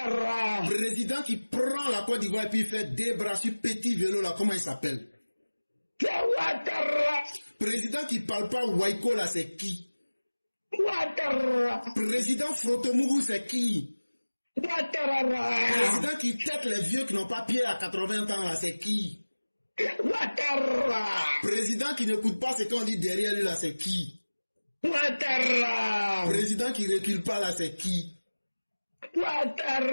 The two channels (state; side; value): inverted; both; correlation -1.00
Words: Président qui prend la Côte d'Ivoire et puis il fait des bras sur petit vélo, là, comment il s'appelle? C'est Ouattara. Président qui parle pas Waiko, là, c'est qui? Ouattara. Président Frotomougou, c'est qui? Ouattara. Président qui tête les vieux qui n'ont pas pied à 80 ans, là, c'est qui? Ouattara. Président qui n'écoute pas ce qu'on dit derrière lui, là, c'est qui? Ouattara. Président qui recule pas, là, c'est qui?